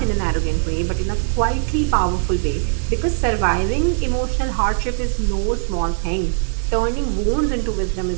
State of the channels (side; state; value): left; silent; digital silence